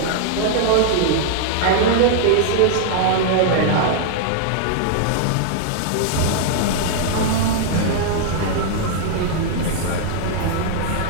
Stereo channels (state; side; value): different; both; correlation -0.01